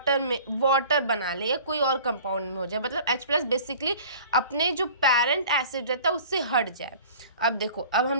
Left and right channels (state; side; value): inverted; both; correlation -0.45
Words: बना ले या कोई और कंपाउंड में हो जाए, मतलब H प्लस बेसिकली अपने जो पेरेंट एसिड रहता है उससे हट जाए। अब देखो, अब